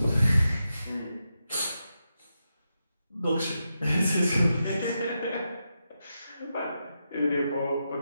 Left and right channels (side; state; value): both; inverted; correlation -0.87